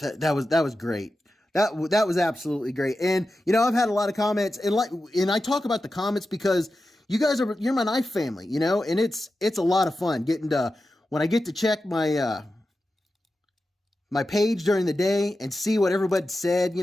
that was great. That was absolutely great. And, you know, I've had a lot of comments, and I talk about the comments because you guys you're my knife family, you know, and it's a lot of fun getting to, when I get to check my, my page during the day and see what everybody said, you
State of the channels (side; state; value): both; normal; correlation 0.92